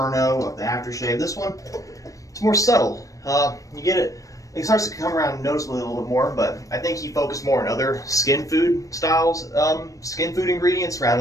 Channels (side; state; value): right; late; 0.16 ms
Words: of the aftershave. This one, it's more subtle. You get it. It starts to come around noticeably a little bit more, but I think he focused more on other skin food styles, skin food ingredients